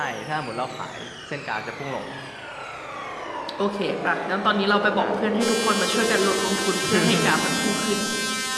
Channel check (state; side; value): identical; both; correlation 1.00